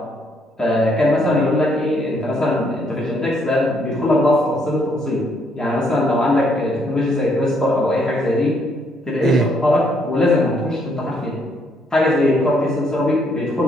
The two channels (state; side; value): normal; both; correlation 0.71